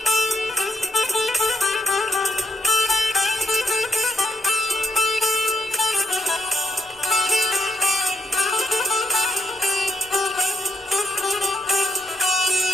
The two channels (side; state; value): both; normal; correlation 0.78